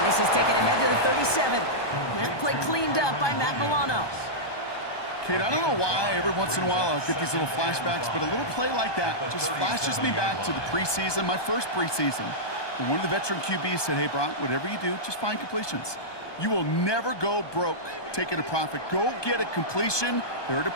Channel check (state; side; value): late; right; 1.2 ms